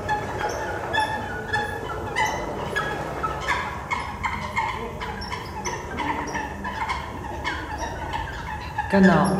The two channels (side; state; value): both; identical; correlation 1.00